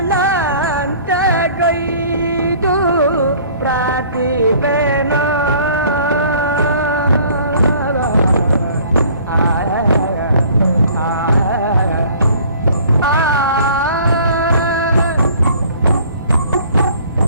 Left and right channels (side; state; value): both; inverted; correlation -0.52